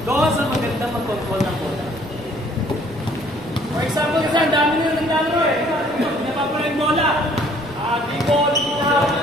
Doon sa magandang mag-control ng bola. For example, kasi ang dami nyo naglalaro eh. Pinapapala yung bola. Dribble, out,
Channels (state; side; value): noise; right; rumble, 21 dB below the sound